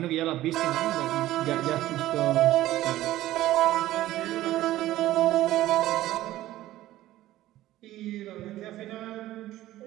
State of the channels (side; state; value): left; quieter; 15.1 dB